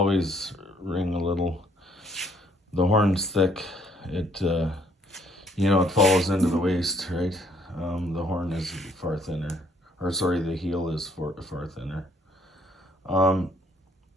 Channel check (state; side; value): normal; both; correlation 0.65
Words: ring a little. The horn's thick. It, it falls into the waist, right? The horn is far thinner. Or, sorry, the heel is far thinner.